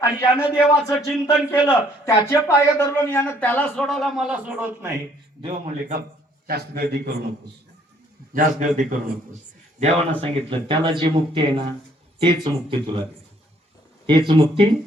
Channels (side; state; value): both; normal; correlation 0.63